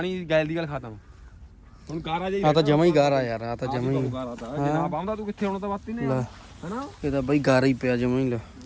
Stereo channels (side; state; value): both; identical; correlation 1.00